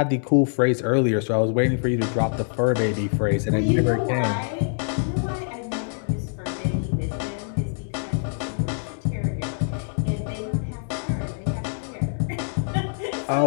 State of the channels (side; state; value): right; silent; digital silence